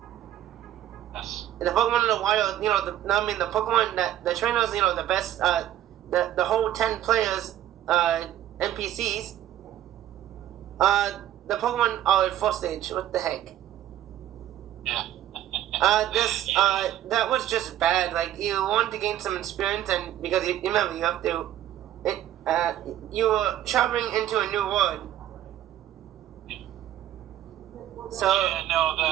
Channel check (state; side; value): quieter; left; 12.4 dB